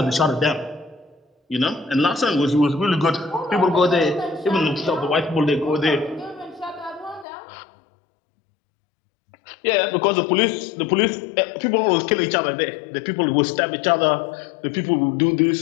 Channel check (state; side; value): drops out; right; at 7.2 s